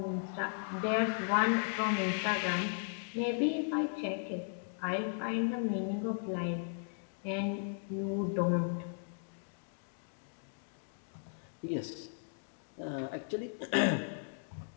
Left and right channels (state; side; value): silent; right; digital silence